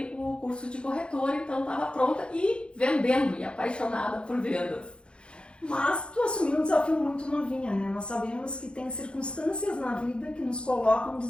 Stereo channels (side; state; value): right; late; 0.055 ms